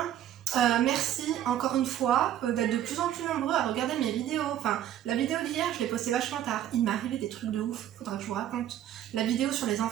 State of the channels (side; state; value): left; quieter; 11.5 dB